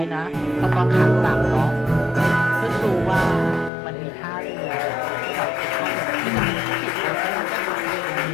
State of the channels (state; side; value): drops out; right; at 3.7 s